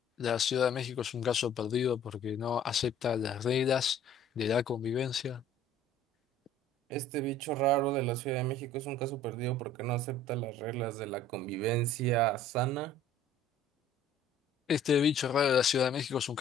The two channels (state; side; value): normal; both; correlation 0.52